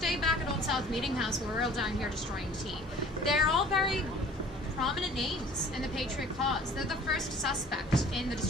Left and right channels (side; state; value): both; normal; correlation 0.50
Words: back at Old South Meeting House where we're all down here destroying tea. They're all very prominent names in the Patriot cause. They're the first suspect in the